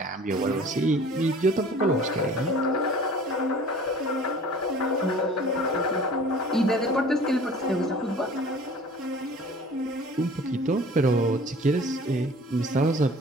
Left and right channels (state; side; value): normal; both; correlation 0.46